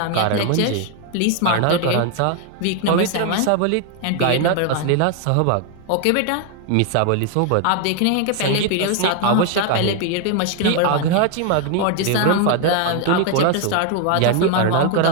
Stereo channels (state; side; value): different; both; correlation 0.00